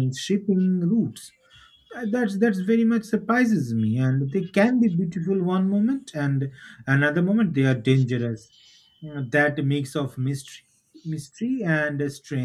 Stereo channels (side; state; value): both; identical; correlation 1.00